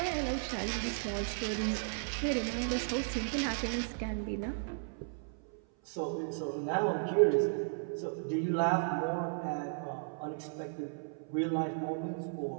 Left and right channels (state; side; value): silent; left; 54 dB below the other